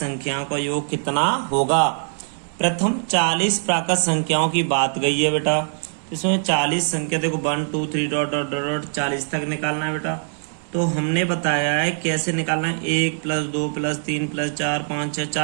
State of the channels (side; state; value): left; silent; digital silence